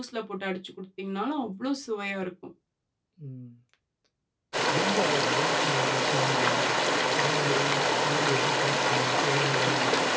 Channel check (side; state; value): both; identical; correlation 1.00